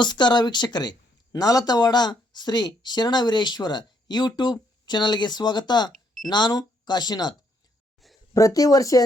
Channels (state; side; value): normal; both; correlation 0.72